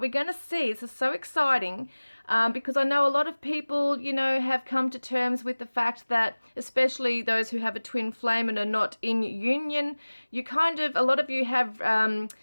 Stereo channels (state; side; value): inverted; both; correlation -1.00